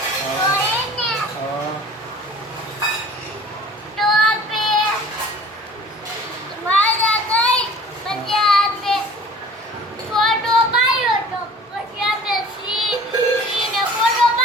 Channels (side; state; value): both; normal; correlation 0.47